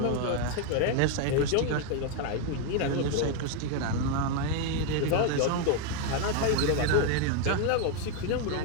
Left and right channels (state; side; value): different; both; correlation 0.01